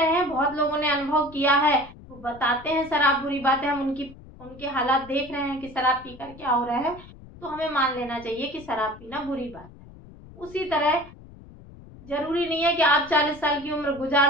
हैं, बहुत लोगों ने अनुभव किया है, वो बताते हैं शराब बुरी बात है, हम उनके हालात देख रहे हैं कि शराब पीकर क्या हो रहा है, तो हमें मान लेना चाहिए कि शराब पीना बुरी बात है। उसी तरह जरूरी नहीं है कि आप 40 साल की उम्र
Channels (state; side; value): noise; left; rumble, 19 dB below the sound